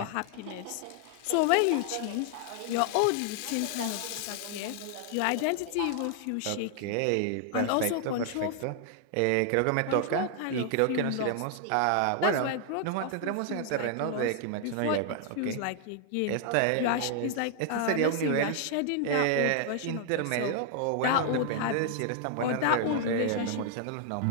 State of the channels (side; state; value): both; different; correlation 0.00